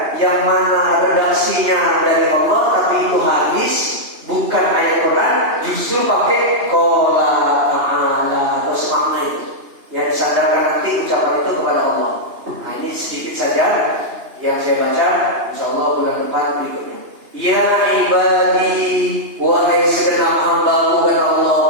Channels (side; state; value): left; late; 2.9 ms